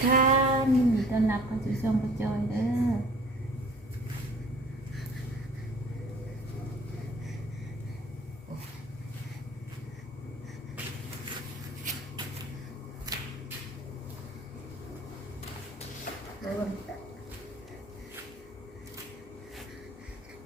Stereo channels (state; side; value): normal; both; correlation 0.50